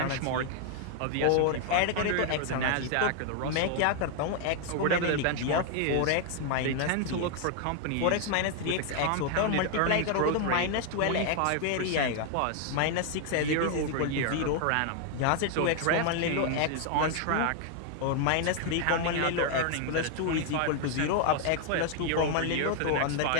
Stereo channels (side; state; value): both; different; correlation 0.00